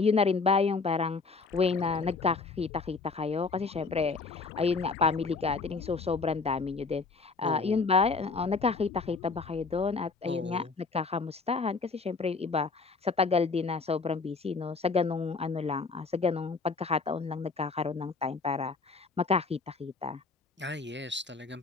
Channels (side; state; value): right; quieter; 4.3 dB